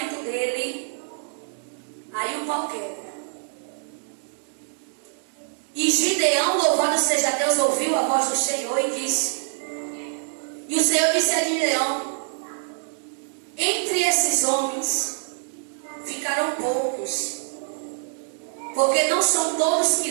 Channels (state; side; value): silent; left; digital silence